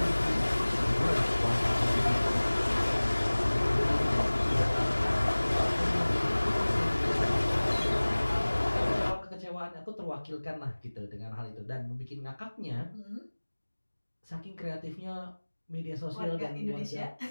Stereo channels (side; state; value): both; inverted; correlation -1.00